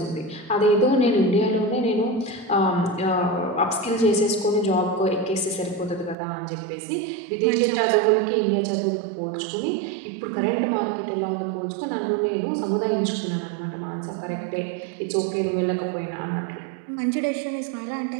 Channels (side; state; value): left; drops out; at 6.2 s